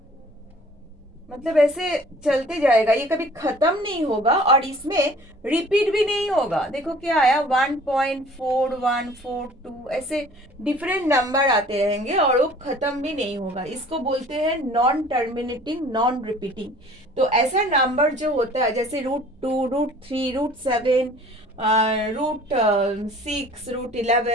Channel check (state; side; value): normal; both; correlation 0.50